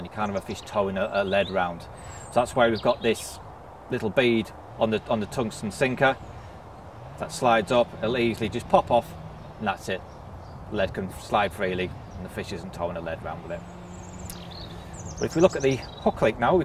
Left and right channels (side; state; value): both; identical; correlation 1.00